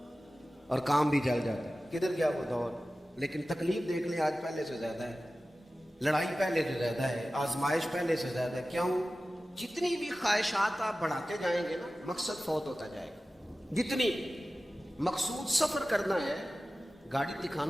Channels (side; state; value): both; normal; correlation 0.96